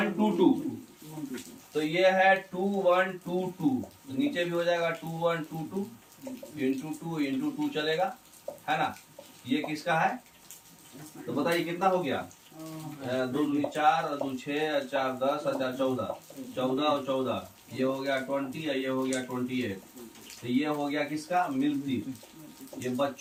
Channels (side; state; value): both; identical; correlation 1.00